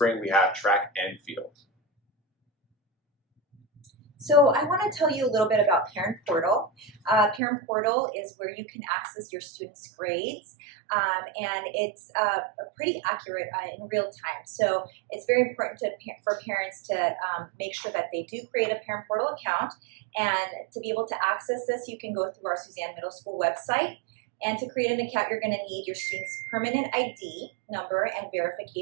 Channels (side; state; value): left; drops out; at 7.4 s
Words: we have track and field. So I want to tell you a little bit about Parent Portal. Parent Portal is where you can access your students' grades, and it's pretty accurate in real time. So it's very important for parents to make sure that they do create a Parent Portal account. And to be able to access this, you can go through our Suzanne Middle School website. And to create an account, you're going to need your student's permanent ID number and